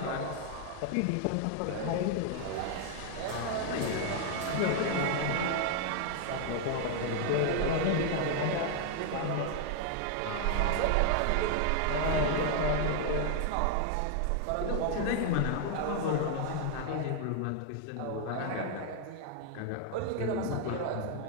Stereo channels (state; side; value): different; both; correlation 0.00